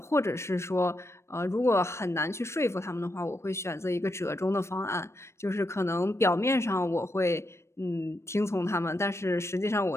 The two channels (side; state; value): right; late; 0.13 ms